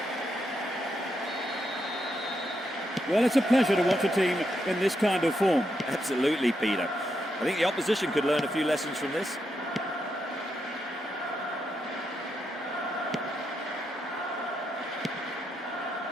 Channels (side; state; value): both; normal; correlation 0.82